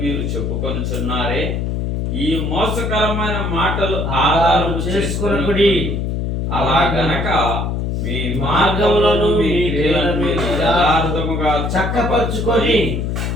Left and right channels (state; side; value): noise; left; hum, 1 dB below the sound